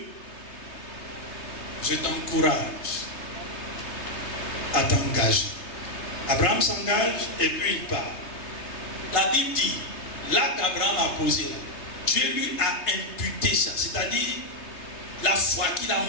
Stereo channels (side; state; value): right; late; 3.3 ms